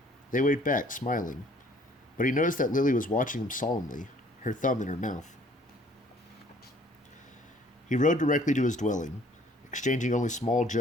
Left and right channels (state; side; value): normal; both; correlation 0.58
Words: They waved back, smiling. But he noticed that Lily was watching him solemnly, her thumb in her mouth. He rode directly to his dwelling, exchanging only small